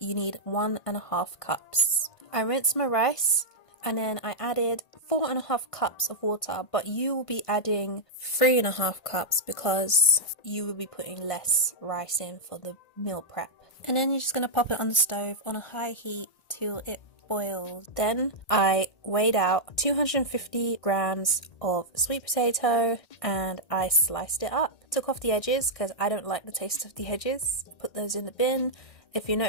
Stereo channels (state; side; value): late; right; 1.6 ms